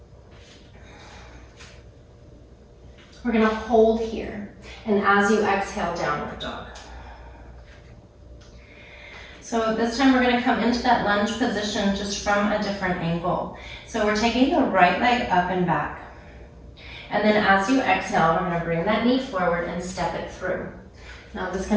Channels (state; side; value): identical; both; correlation 1.00